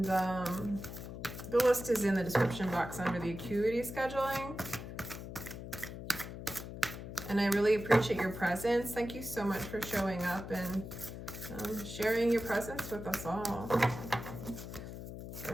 the list is in the description box under the acuity scheduling. And I really appreciate your presence. Thank you so much for showing up and sharing your presence with us all. All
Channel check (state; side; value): noise; left; hum, 9 dB below the sound